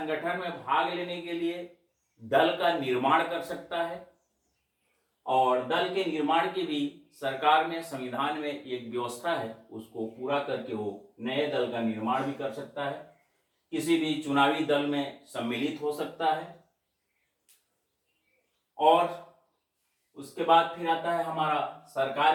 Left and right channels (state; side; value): identical; both; correlation 1.00